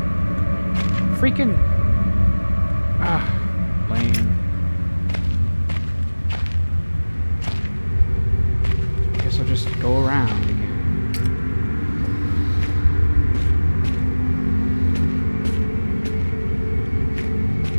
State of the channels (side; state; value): both; inverted; correlation -1.00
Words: Freaking... Ah, lame. Guess I'll just go around again.